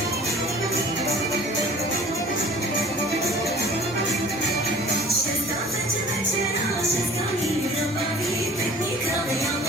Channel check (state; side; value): normal; both; correlation 0.47